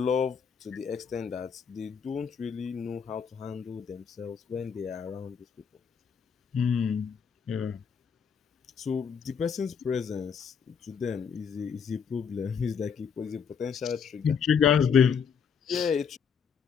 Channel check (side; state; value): right; quieter; 6.6 dB